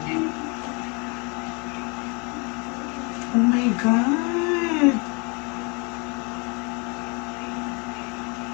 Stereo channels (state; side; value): quieter; right; 31.6 dB